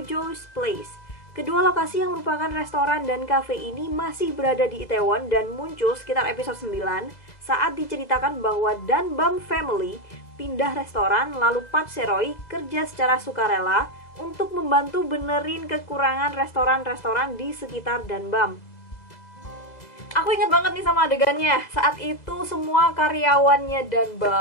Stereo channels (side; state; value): right; late; 2.0 ms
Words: Place. Kedua lokasi yang merupakan restoran dan cafe ini masih berada di Itaewon dan muncul sekitar episode 9 saat diceritakan bahwa Danbam Family pindah restoran lalu Park Se-roy kerja secara sukarela untuk membantu benerin kekurangan restoran-restoran di sekitar Danbam. Aku ingat banget nih sama adegannya. Saat itu semua karyawannya